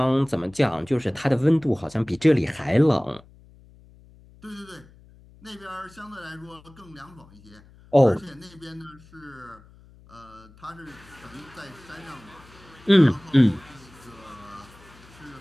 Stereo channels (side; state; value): left; noise; hum, 25 dB below the sound